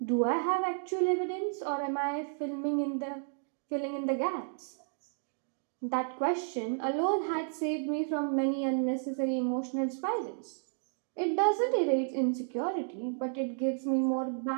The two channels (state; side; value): silent; left; digital silence